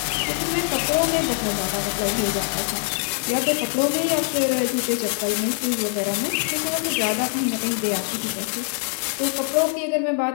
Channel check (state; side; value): silent; right; digital silence